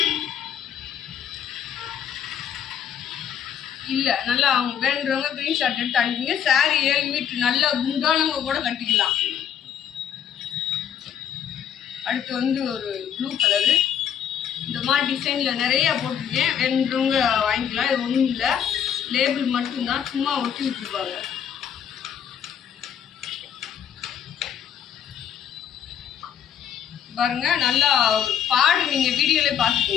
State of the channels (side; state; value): right; quieter; 8.9 dB